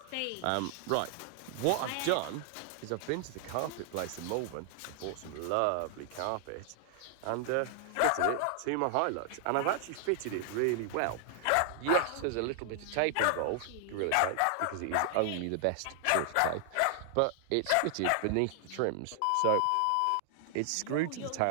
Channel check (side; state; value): both; different; correlation 0.00